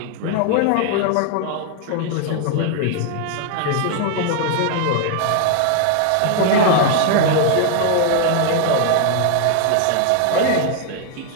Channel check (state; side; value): different; both; correlation 0.00